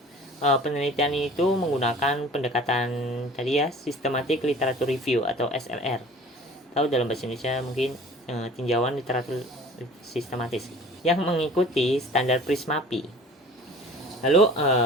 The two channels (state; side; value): normal; both; correlation 0.45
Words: penelitian itu menggunakan pendekatan tadi ya, systematic literature review atau SLR. Tahu dalam bahasa Indonesia mungkin tinjauan literatur sistematis yang mengikuti standar Prismapi. Lalu